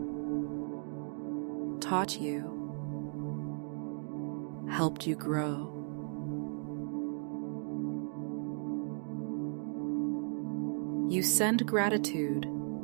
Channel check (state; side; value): silent; left; 54 dB below the other